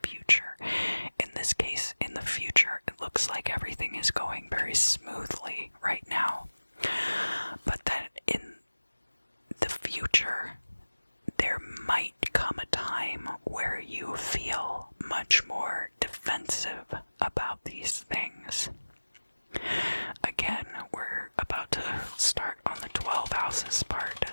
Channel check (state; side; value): inverted; both; correlation -1.00